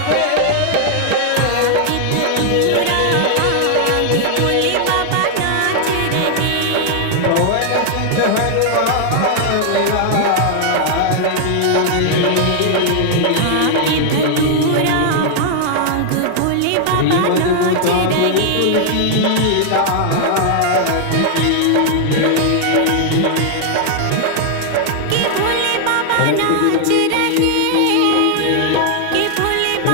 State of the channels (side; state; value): both; different; correlation 0.00